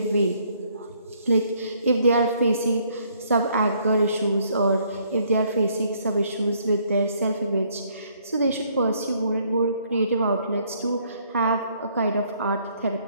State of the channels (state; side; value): inverted; both; correlation -0.66